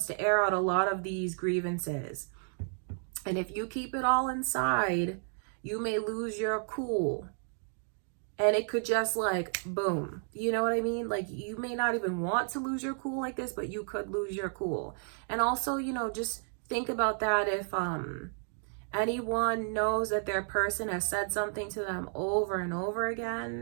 to air out a lot of these grievances. And if you keep it all inside, you may lose your cool. And it could just like, boom. You know what I mean? Like, you may not even want to lose your cool like this, but you could lose your cool. And also, you know, just think about that. If anyone knows that their person has said something to them over and over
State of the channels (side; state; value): left; silent; 56 dB below the other